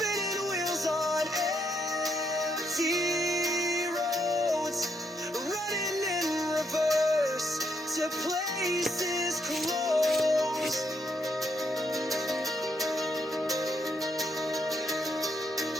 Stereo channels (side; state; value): both; normal; correlation 0.76